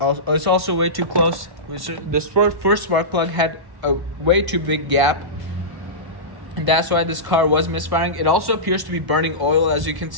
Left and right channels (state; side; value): late; left; 1.0 ms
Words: it's also way too close. The first spark plug had a way too big gap, and that's why this car was misfiring. It also appears to be burning oil, as you can